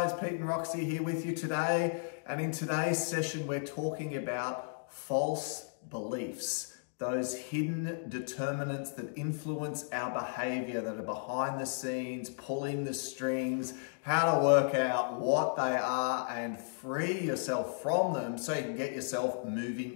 Pete and Roxy here with you today, and in today's session we're talking about false beliefs, those hidden determinants that influence our behavior, that are behind the scenes, pulling the strings, how to work out what they are and free yourself from them so you can get yourself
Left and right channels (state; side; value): silent; right; digital silence